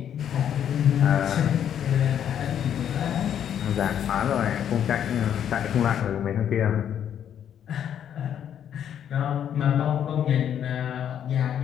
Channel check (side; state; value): right; quieter; 9.5 dB